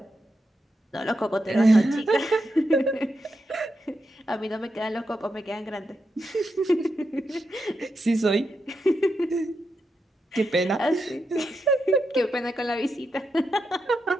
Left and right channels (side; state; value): both; normal; correlation 0.85